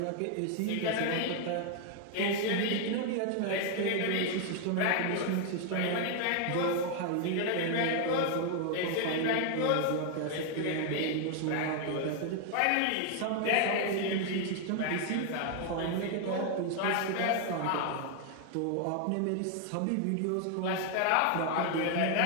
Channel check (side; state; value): both; different; correlation 0.00